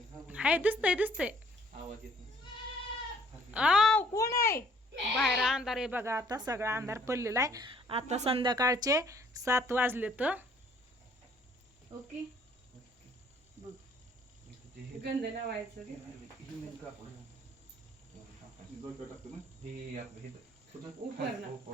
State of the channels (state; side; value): normal; both; correlation 0.61